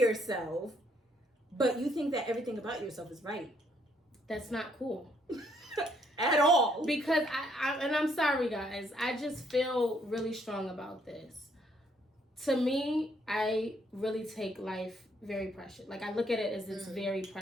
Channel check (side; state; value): both; normal; correlation 0.69